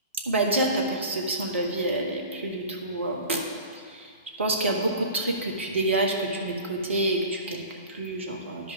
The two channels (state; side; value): inverted; both; correlation -0.38